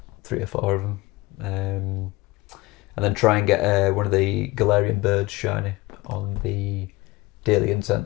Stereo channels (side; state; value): right; quieter; 20.4 dB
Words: 3 or 4 of them, and then try and get one of the Galarian birds shiny on the daily